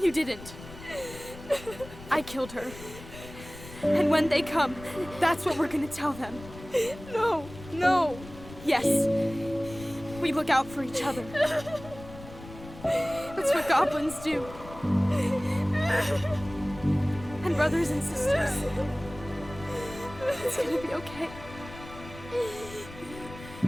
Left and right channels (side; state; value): left; noise; rumble, 16 dB below the sound